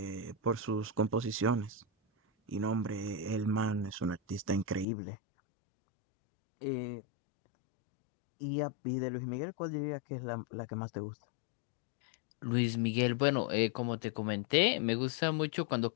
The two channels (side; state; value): right; drops out; at 4.9 s